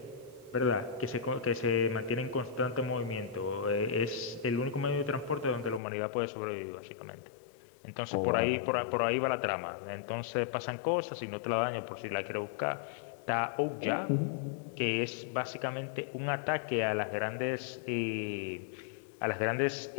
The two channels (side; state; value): right; drops out; at 5.8 s